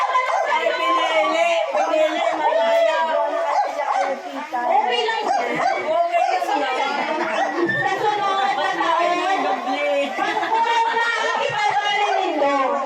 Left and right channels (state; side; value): identical; both; correlation 1.00